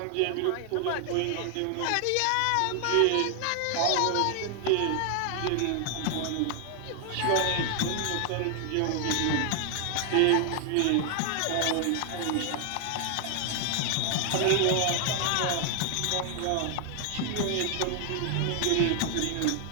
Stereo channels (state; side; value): different; both; correlation 0.00